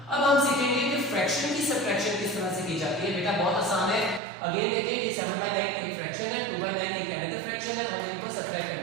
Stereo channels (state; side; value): drops out; left; at 4.2 s